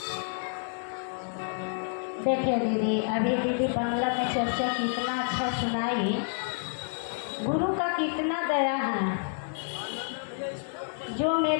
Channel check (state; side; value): silent; right; 58 dB below the other